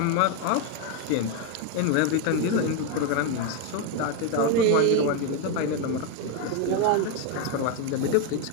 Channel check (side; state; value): both; different; correlation 0.01